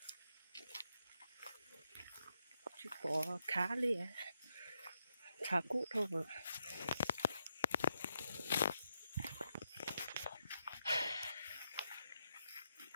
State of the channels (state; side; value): inverted; both; correlation -0.83